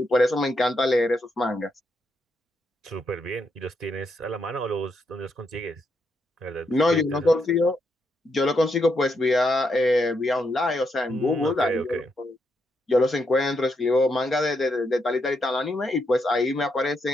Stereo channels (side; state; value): both; normal; correlation 0.80